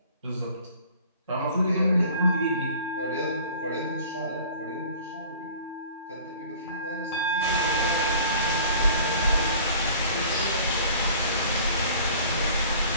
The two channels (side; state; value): both; inverted; correlation -0.47